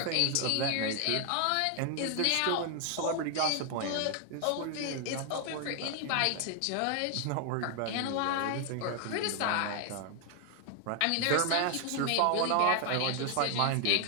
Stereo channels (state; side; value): different; both; correlation 0.00